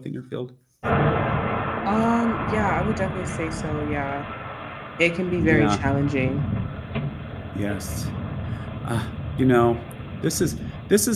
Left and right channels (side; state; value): both; identical; correlation 1.00